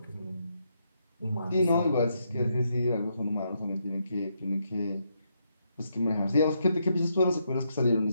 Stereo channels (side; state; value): both; inverted; correlation -0.79